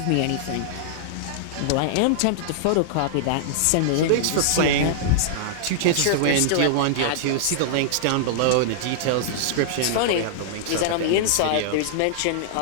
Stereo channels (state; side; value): different; both; correlation -0.01